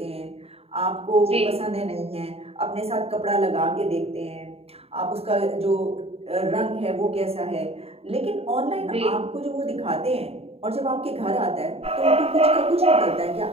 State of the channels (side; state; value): left; late; 0.29 ms